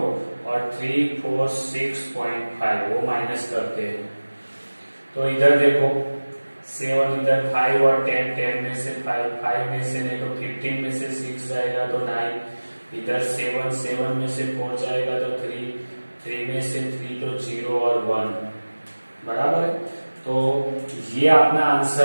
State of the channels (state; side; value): inverted; both; correlation -1.00